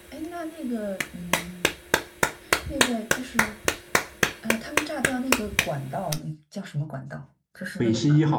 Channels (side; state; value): both; identical; correlation 1.00